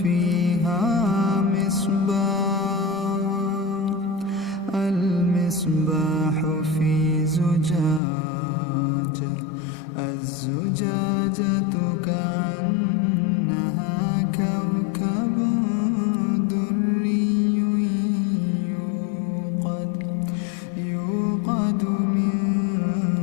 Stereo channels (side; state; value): right; drops out; at 8.0 s